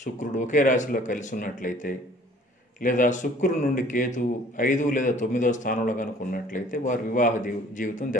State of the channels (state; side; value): normal; both; correlation 0.54